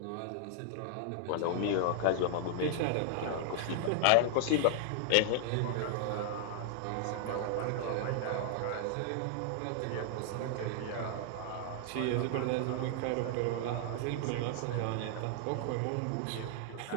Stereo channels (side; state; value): both; different; correlation -0.01